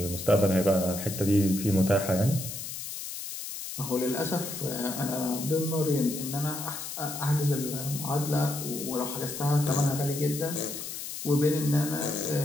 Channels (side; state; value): left; noise; hiss, 7 dB below the sound